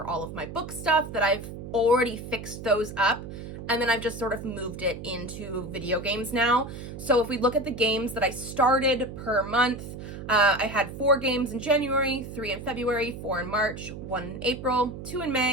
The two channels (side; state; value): right; noise; hum, 10 dB below the sound